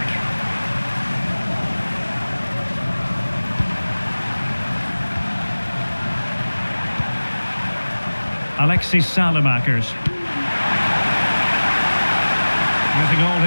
Alexis Salamakers. Using all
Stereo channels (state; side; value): inverted; both; correlation -1.00